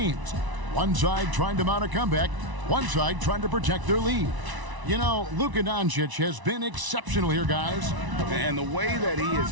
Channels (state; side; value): late; left; 1.0 ms